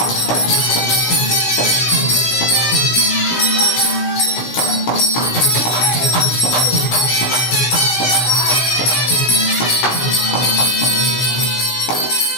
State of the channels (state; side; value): late; right; 16 ms